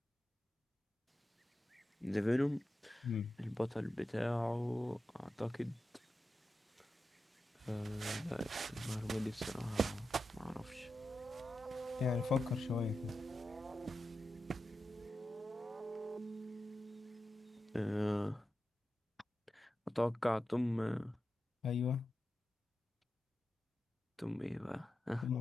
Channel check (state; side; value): normal; both; correlation 0.91